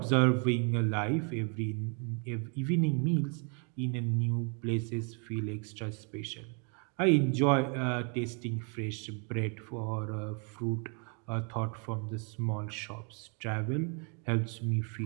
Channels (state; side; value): quieter; left; 37.8 dB